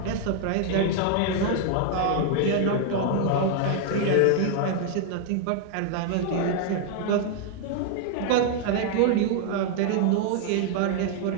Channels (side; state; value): both; different; correlation 0.00